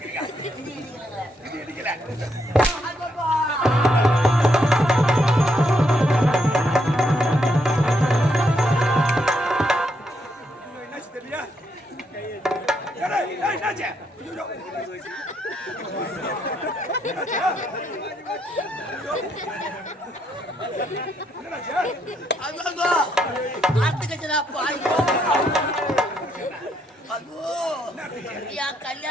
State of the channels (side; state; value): both; normal; correlation 0.76